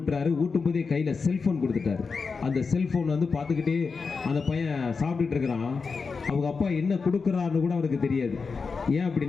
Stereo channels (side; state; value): right; quieter; 4.9 dB